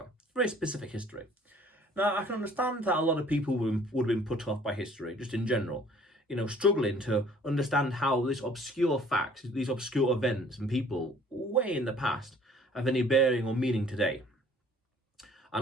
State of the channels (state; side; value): normal; both; correlation 0.55